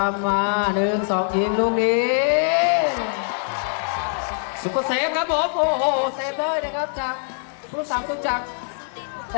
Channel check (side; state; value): right; silent; digital silence